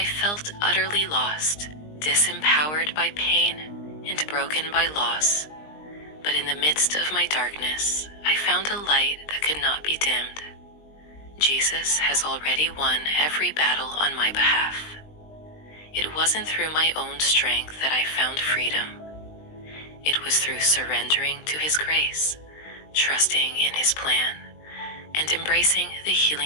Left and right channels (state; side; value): late; right; 20 ms